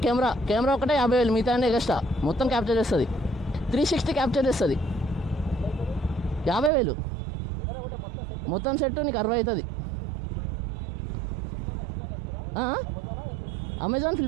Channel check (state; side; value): drops out; left; at 6.7 s